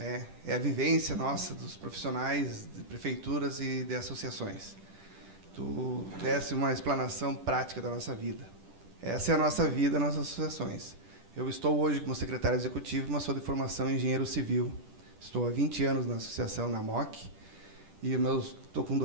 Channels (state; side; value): late; left; 10 ms